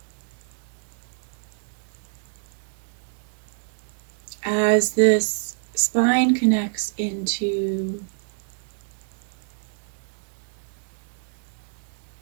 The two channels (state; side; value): silent; left; digital silence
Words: As this spine connects into